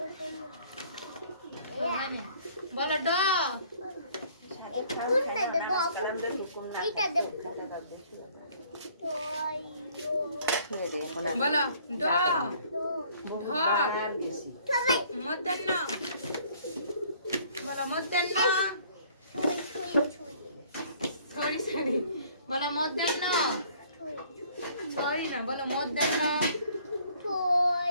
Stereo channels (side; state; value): both; inverted; correlation -0.58